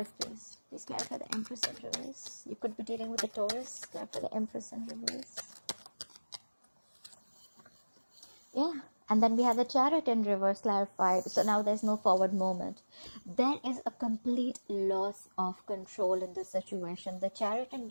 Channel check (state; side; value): inverted; both; correlation -1.00